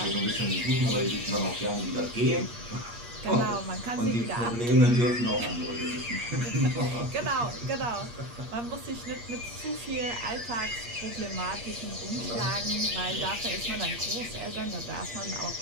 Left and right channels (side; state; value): left; late; 8.5 ms